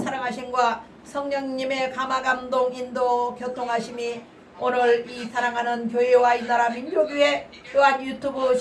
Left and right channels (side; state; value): both; identical; correlation 1.00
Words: 성령님의 감화감동 인도 교통하심이 오늘 이 사랑하는 교회와 이 나라 민족위에 또한 유튜브